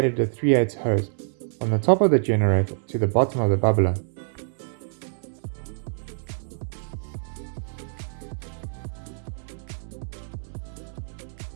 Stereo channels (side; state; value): left; silent; 61 dB below the other